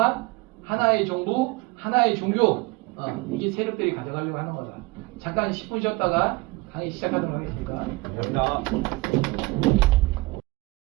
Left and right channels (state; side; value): quieter; left; 23.3 dB